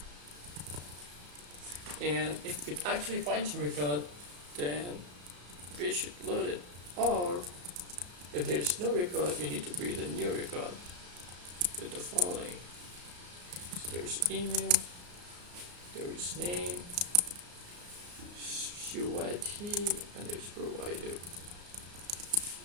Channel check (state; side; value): late; left; 34 ms